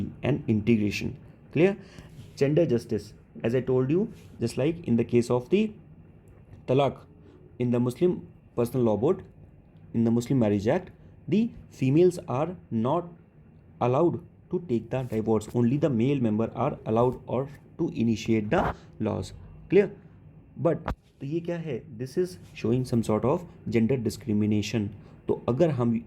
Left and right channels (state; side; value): identical; both; correlation 1.00